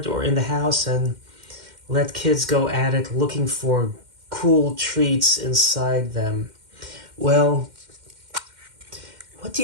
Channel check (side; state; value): left; late; 2.1 ms